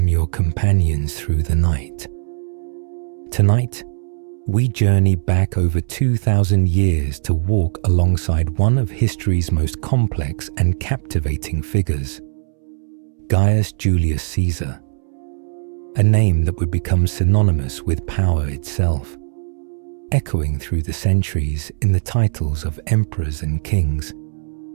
your companions through the night. Tonight, we journey back over 2,000 years to walk alongside one of history's most complex and captivating figures, Gaius Julius Caesar, a name that would become synonymous with power itself, echoing through the centuries in the titles of emperors and kings.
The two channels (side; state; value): left; silent; 66 dB below the other